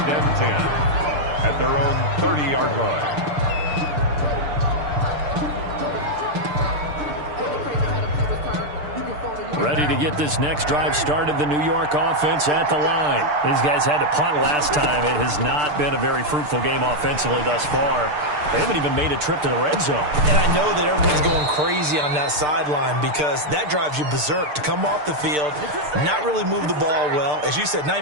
and 10 at their own 30-yard line. Ready to get this next drive started, the New York offense at the line. These guys had to punt last time. It has not been a very fruitful game offensively thus far. They haven't even made a trip to the red zone. And I know that everyone's going crazy on that sideline because that drives you berserk to come off the field, not really move the ball well. As you said, not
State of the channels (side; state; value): left; late; 6.7 ms